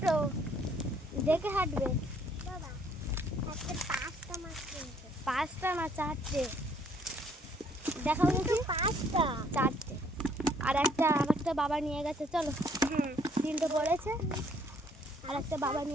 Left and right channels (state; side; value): normal; both; correlation 0.64